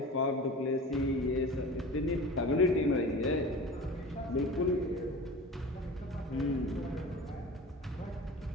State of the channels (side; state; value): both; normal; correlation 0.35